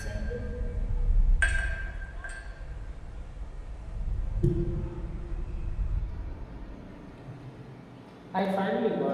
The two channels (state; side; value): identical; both; correlation 1.00